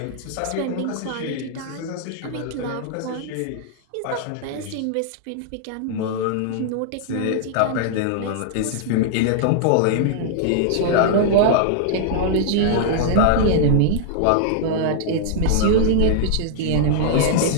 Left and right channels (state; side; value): different; both; correlation -0.01